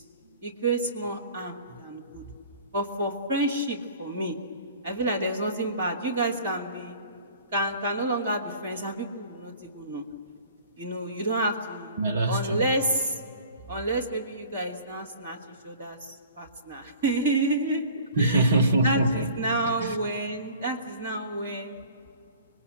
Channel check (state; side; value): inverted; both; correlation -0.47